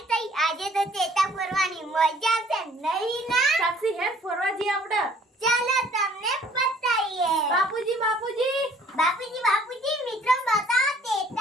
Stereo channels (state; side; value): normal; both; correlation 0.57